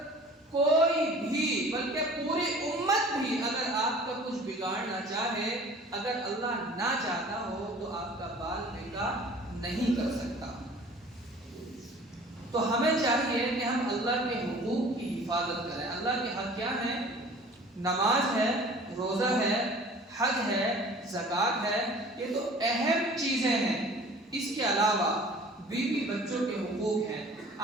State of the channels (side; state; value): both; normal; correlation 0.47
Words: کوئی بھی بلکہ پوری امت بھی اگر آپ کا کچھ بگاڑنا چاہے، اگر اللہ نہ چاہتا ہو تو آپ کا بال بیکا نہیں کر سکتا۔ تو ہمیں چاہیے کہ ہم اللہ کے حقوق کی حفاظت کریں۔ اللہ کے حق کیا ہیں؟ نماز ہے، روزہ ہے، حج ہے، زکوٰۃ ہے، یہ تو اہم چیزیں ہیں۔ اس کے علاوہ بیوی بچوں کے حقوق ہیں،